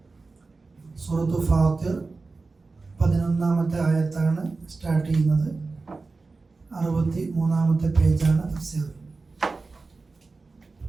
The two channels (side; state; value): left; quieter; 3.9 dB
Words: സൂറത്തു ഫാത്തിർ 11-ാമത്തെ ആയത്താണ് സ്റ്റാർട്ട് ചെയ്യുന്നത്. 63-ാമത്തെ പേജാണ് തഫ്സീർ.